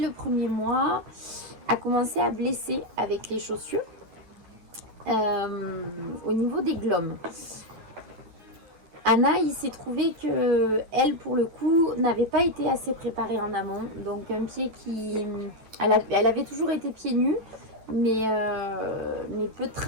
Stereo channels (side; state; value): left; late; 9.3 ms